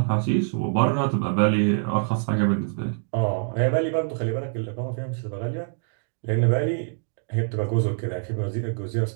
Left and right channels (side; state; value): left; silent; 62 dB below the other